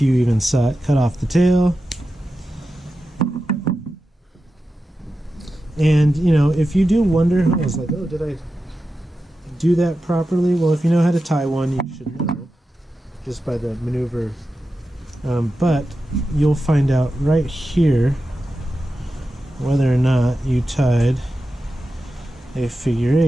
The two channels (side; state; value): both; normal; correlation 0.91